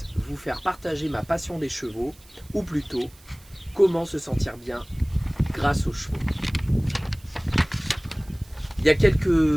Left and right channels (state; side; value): noise; right; hiss, 26 dB below the sound